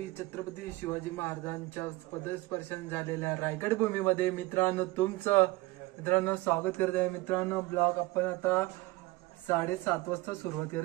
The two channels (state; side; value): quieter; left; 20.3 dB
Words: छत्रपती शिवाजी महाराजांच्या पदस्पर्शन झालेल्या रायगड भूमीमध्ये मित्रांनो स्वागत करत आहे। मित्रांनो ब्लॉग आपण आता 7:30 वाजता सुरुवात